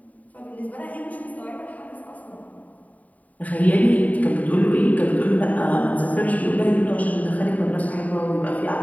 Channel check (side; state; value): right; late; 0.072 ms